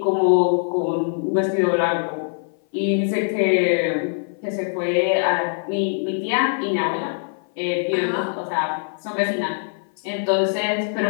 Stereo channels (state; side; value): silent; right; 58 dB below the other